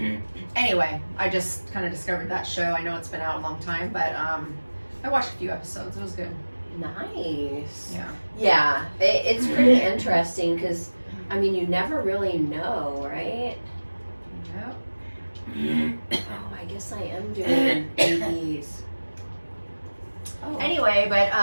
Anyway, I just kind of discovered that show. I know it's been out a long time, but I watched a few episodes. It was good. Nice. Yeah. Yeah, it's pretty interesting because, you never really know, right? Yep. Oh, I guess I am doing babies. Oh. Anyway, but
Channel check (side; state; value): both; inverted; correlation -1.00